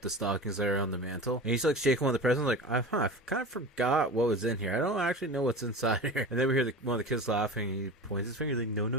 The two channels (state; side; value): normal; both; correlation 0.32